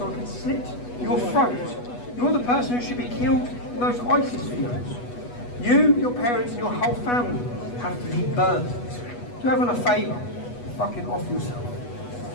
I can slit your throat. You're the person who should be killed in those ISIS fields. You, your parents and your whole family have to be burned. Do everyone a favour, fucking off yourself.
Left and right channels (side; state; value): right; late; 8.2 ms